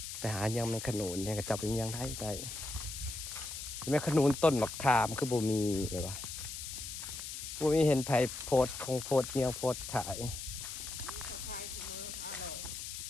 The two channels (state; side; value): noise; left; hiss, 7 dB below the sound